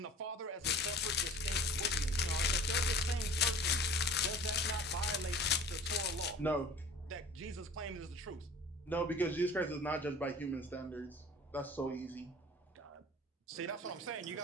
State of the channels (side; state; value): both; normal; correlation 0.44